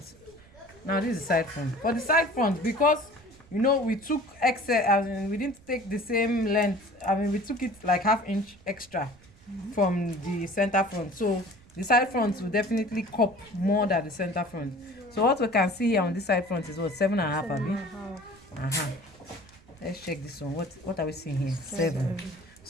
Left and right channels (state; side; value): noise; right; rumble, 25 dB below the sound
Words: Now this is side front. For the side front, because you know we took excess, we didn't take the same length. We took it like half inch extra from the center front. So the side front will definitely cup more than the center front. So what we can see here on this side front is what, 7.5, Abi? Let's check this one. What are we seeing here? 7.